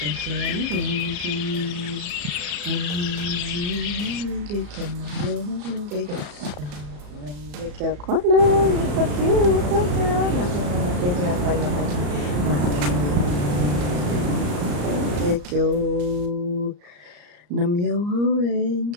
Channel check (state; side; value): late; left; 34 ms